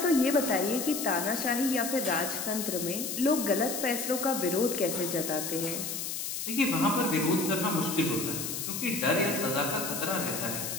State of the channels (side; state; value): left; noise; hiss, 4 dB below the sound